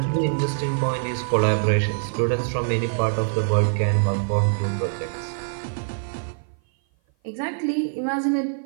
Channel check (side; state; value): left; silent; 56 dB below the other